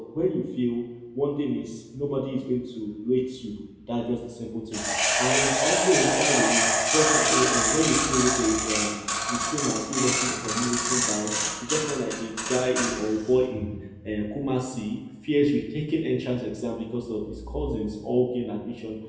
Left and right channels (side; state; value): both; identical; correlation 1.00